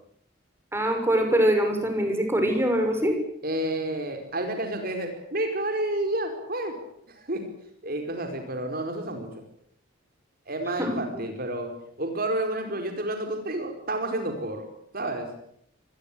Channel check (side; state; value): both; normal; correlation 0.40